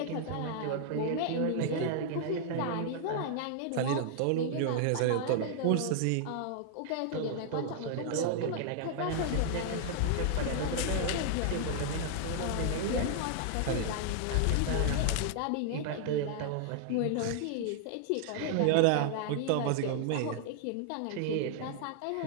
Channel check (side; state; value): both; different; correlation -0.01